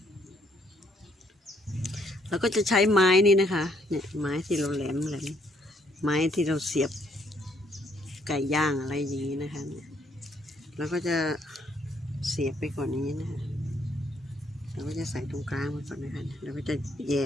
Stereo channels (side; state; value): both; normal; correlation 0.69